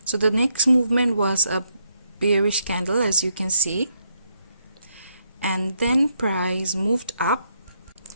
So the next movement was a bearish candle, as you can see, and then price moved up.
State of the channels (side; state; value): both; inverted; correlation -0.77